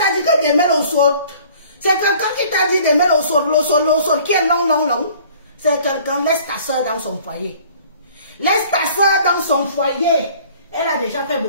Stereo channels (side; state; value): both; inverted; correlation -0.52